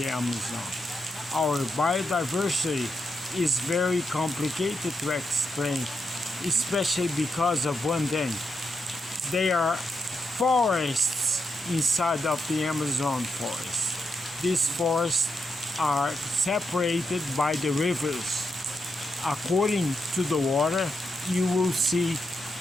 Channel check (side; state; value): both; normal; correlation 0.83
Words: Amazon. Our biodiversity is very complicated to explain, especially because of one thing. There are forests inside of the Amazon forest. These forests are separated by the rivers. According to the water, you will see